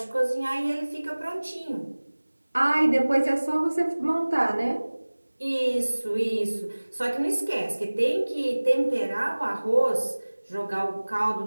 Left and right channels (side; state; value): both; inverted; correlation -1.00